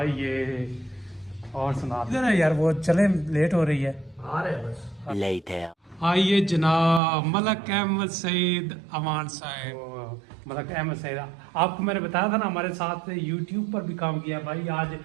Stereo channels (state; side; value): drops out; left; at 7.0 s